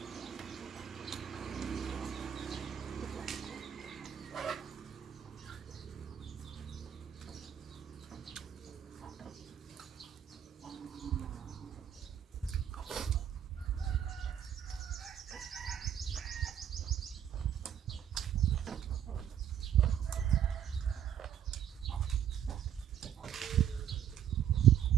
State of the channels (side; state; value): left; quieter; 9.5 dB